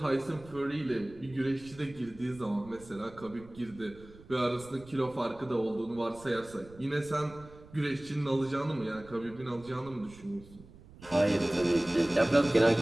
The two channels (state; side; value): noise; right; rumble, 20 dB below the sound